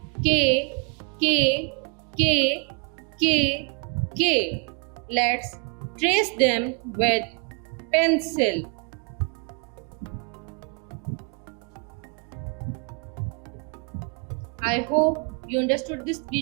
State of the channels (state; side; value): quieter; left; 34.5 dB